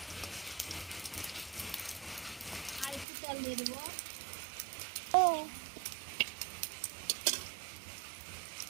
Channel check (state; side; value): drops out; left; at 3.1 s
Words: আর একটু তেল দিয়ে দেবো।